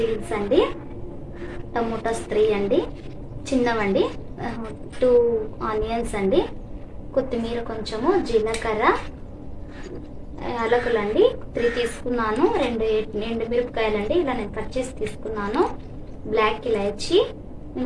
అండి: టమోటాస్ 3 అండి, చిన్నవండి, 2 ఆనియన్స్ అండి, కొత్తిమీర కొంచెము, జీలకర్ర, యాలకులు అండి 3 తీసుకున్నాను, 2 ఎండుమిరపకాయలు అండి, ఇలా నేను కట్ చేసి తీసుకున్నాను, బ్లాక్ ఇలాచీ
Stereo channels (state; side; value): identical; both; correlation 1.00